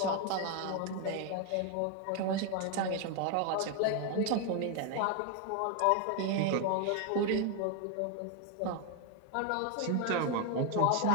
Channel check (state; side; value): different; both; correlation 0.01